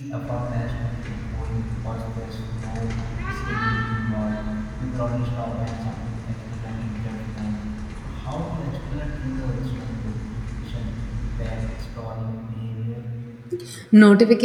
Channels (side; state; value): both; identical; correlation 1.00